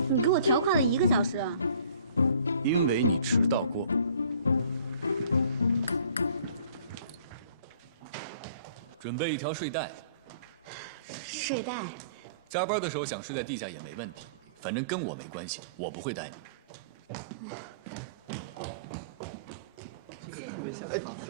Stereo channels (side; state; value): both; inverted; correlation -0.54